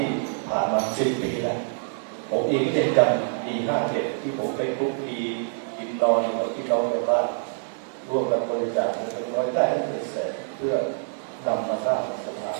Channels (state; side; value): silent; left; digital silence